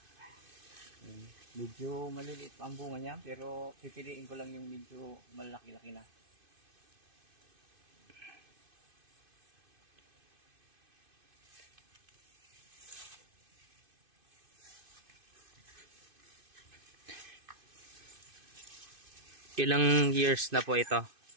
Medyo maliliit pa ang bunga niya, pero pipiliin ko lang yung medyo malaki-laki na. Ilang years na po ito?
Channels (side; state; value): left; late; 2.5 ms